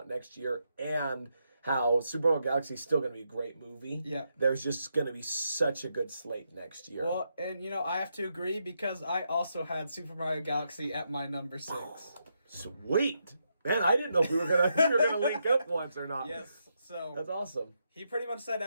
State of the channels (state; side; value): inverted; both; correlation -0.81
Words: next year, and how Super Mario Galaxy is still going to be a great movie. Yeah. There's just going to be such a good slate next year. Well, and, I have to agree because I also had Super Mario Galaxy at my number 6. Sweet. Man, I didn't know if we were going to link up once or not. Yes. So that's awesome. He pretty much said